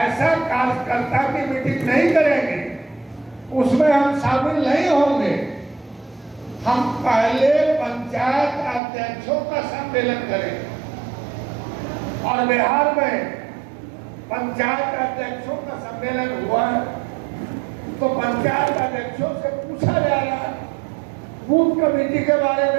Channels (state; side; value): drops out; left; at 8.8 s